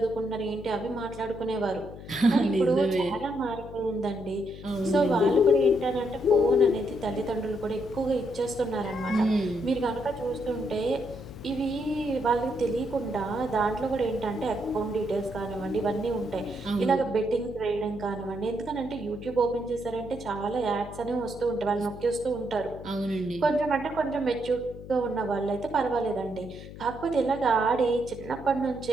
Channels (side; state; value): left; noise; hum, 14 dB below the sound